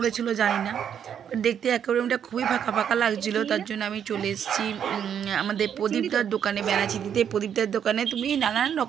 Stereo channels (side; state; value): left; quieter; 8.6 dB